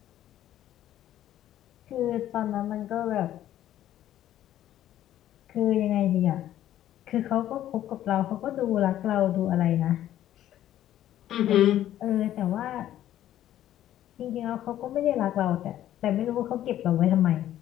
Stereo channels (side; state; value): right; quieter; 12.4 dB